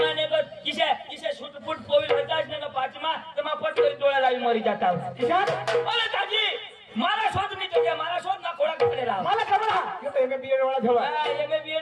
बस किसे छुटपुट पोविना जाच ना पाचमा तर मग पटकन डोळा लावी मरी जाता किसा अरे दादी मला शोध मी तुझ्या मला शोध ना कोळा पडेला मला खबर हा तो एमे बीएड वाला ठेवा एमे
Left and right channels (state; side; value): identical; both; correlation 1.00